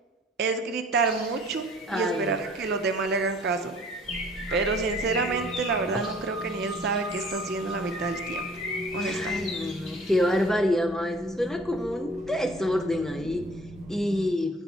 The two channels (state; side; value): normal; both; correlation 0.52